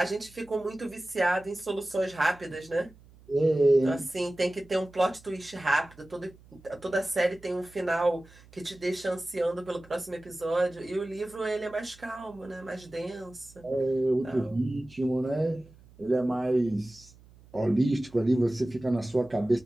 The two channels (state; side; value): noise; right; hum, 24 dB below the sound